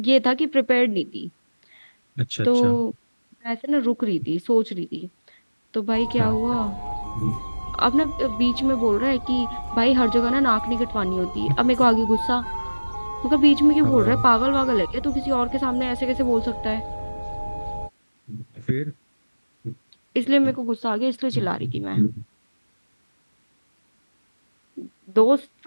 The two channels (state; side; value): inverted; both; correlation -1.00